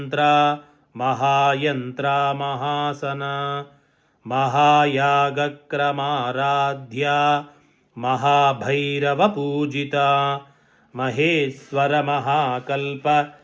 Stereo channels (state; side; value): identical; both; correlation 1.00